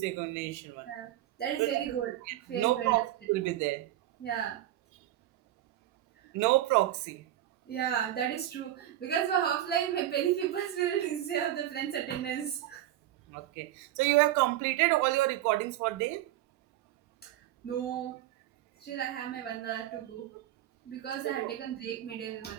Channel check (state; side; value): quieter; left; 13.3 dB